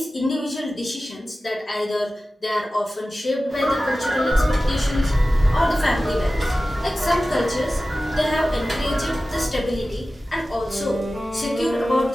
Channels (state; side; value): normal; both; correlation 0.95